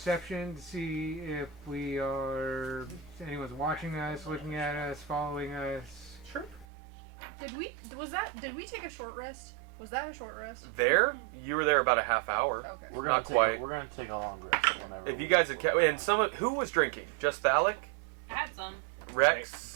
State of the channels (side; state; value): left; drops out; at 6.7 s